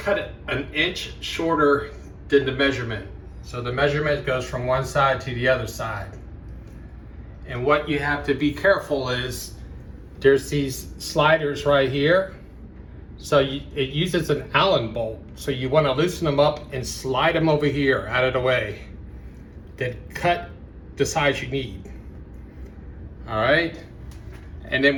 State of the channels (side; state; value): both; identical; correlation 1.00